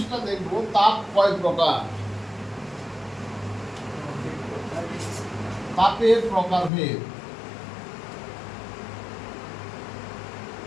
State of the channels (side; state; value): right; drops out; at 6.7 s